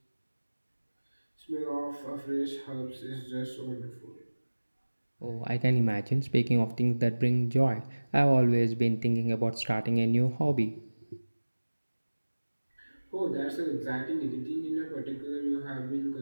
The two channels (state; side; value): inverted; both; correlation -1.00